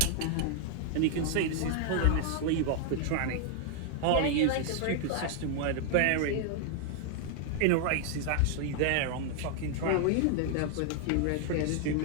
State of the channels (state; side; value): different; both; correlation 0.00